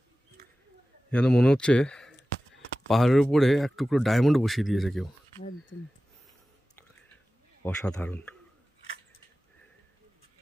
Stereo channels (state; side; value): normal; both; correlation 0.96